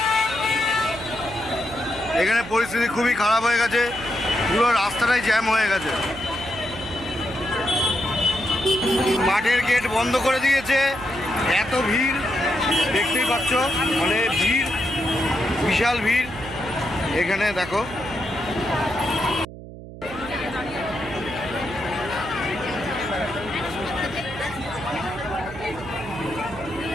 এখানে পরিস্থিতি খুবই খারাপ হয়ে গেছে, পুরো রাস্তাটাই জ্যাম হয়ে গেছে। মাঠের গেট বন্ধ করে দিয়েছে, এত ভিড় দেখতেই পাচ্ছ, মানে ভিড়, বিশাল ভিড়। এখানে দেখো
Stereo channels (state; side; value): noise; right; hum, 14 dB below the sound